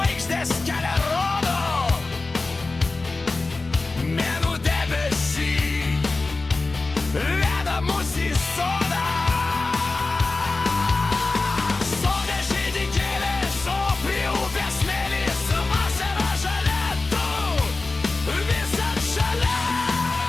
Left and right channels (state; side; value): quieter; right; 3.5 dB